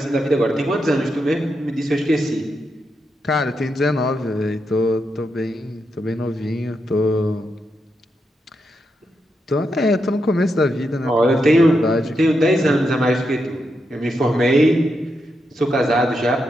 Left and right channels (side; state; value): both; normal; correlation 0.84